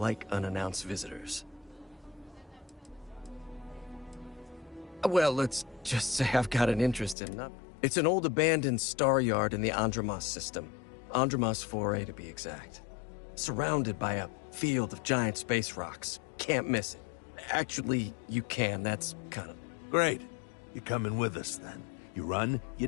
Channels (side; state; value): right; drops out; at 7.2 s